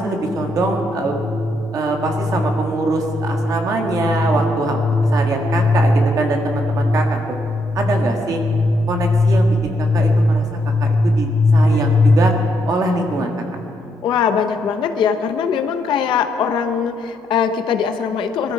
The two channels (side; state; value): both; normal; correlation 0.76